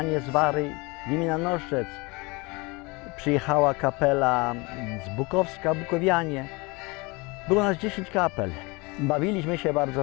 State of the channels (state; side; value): quieter; right; 26.2 dB